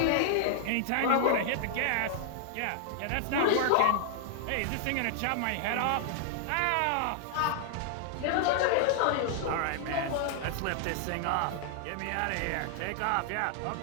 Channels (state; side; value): different; both; correlation -0.01